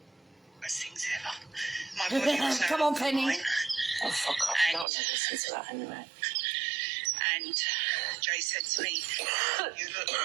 Best things ever. My body was Come on, Penny. Oh, fuck off. I don't want to listen to that anyway. And Jay said to me, you look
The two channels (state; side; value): drops out; left; at 4.9 s